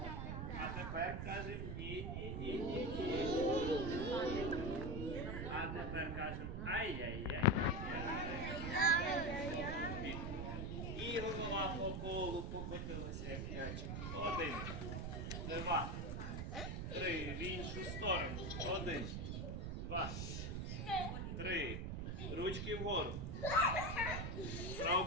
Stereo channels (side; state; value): right; noise; rumble, 3 dB below the sound